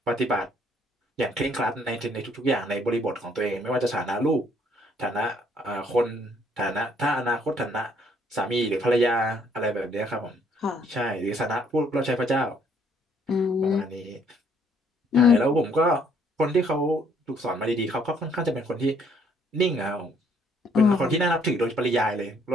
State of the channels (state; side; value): normal; both; correlation 0.66